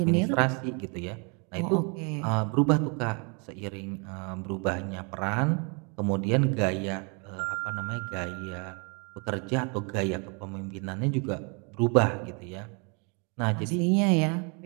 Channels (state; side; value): quieter; left; 34.3 dB